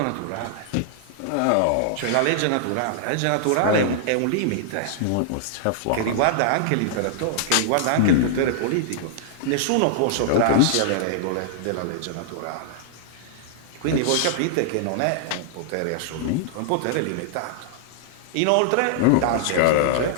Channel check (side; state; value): both; different; correlation -0.01